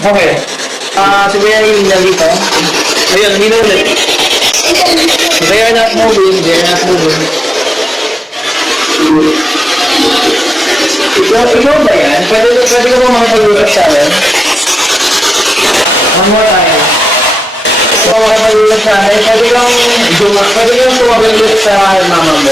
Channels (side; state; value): both; normal; correlation 0.91